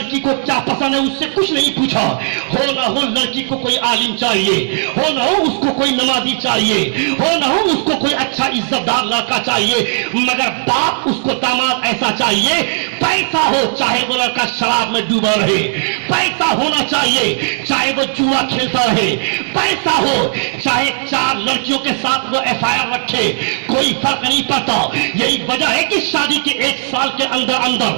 کو کیا پسند ہے اس سے کچھ نہیں پوچھا. ہو نہ ہو لڑکی کو کوئی عالم چاہیے, ہو نہ ہو اس کو کوئی نمازی چاہیے, ہو نہ ہو اس کو کوئی اچھا عزت دار لڑکا چاہیے, مگر باپ اس کو داماد ایسا چاہیے پیسہ ہو چاہے وہ لڑکا شراب میں ڈوبا رہے, پیسہ ہونا چاہیے چاہے وہ جوا کھیلتا رہے, پیسہ ہو چاہے 4 لڑکیوں کے ساتھ وہ FIR رکھے, کوئی فرق نہیں پڑتا. یہی وجہ ہے کہ شادی کے 1 سال کے اندر اندر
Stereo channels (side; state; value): left; silent; digital silence